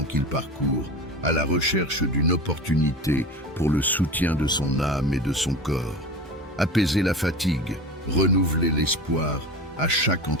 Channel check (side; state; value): both; normal; correlation 0.30